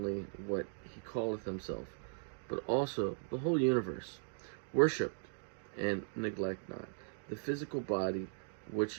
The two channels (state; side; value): silent; left; digital silence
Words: what he calleth himself, but also the whole universe. Worship and neglect not the physical body,